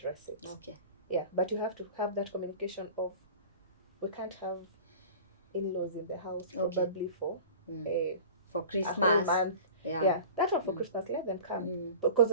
it. Okay. Yeah, but you have to have that communication of, we can't have in-laws in the house, probably for Christmas. A whole month. Yeah. That one for Christmas, let them come. Because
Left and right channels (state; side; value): inverted; both; correlation -0.40